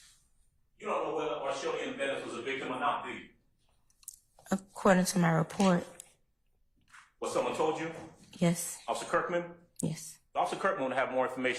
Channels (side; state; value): both; identical; correlation 1.00